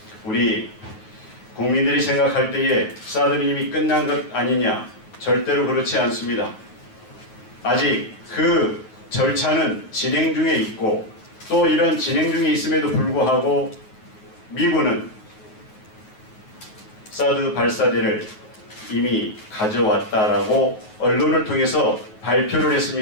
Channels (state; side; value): late; right; 9.3 ms